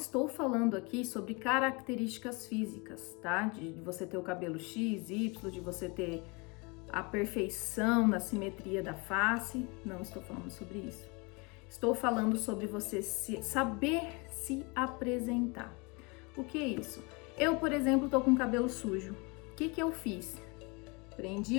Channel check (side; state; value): right; quieter; 29.1 dB